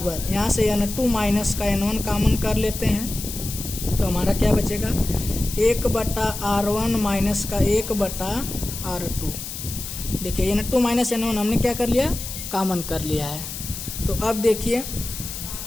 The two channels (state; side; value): noise; left; hiss, 8 dB below the sound